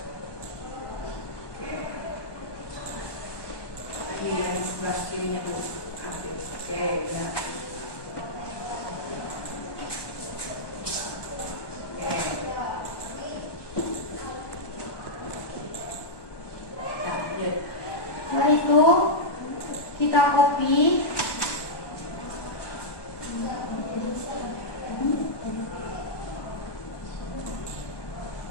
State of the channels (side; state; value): right; late; 1.2 ms